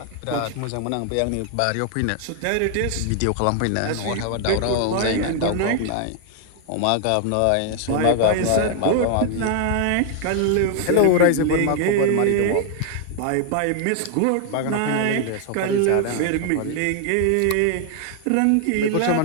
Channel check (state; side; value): different; both; correlation 0.00